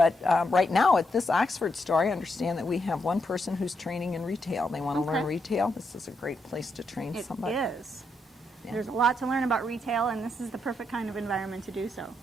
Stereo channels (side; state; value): both; normal; correlation 0.80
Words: right now at this Oxford store, I understand that we have one person who's training in retail. They want to learn retail. This is a great place to train somebody. It is. Yeah. There's a lot to learn about retail, and this is the perfect kind of environment to do so.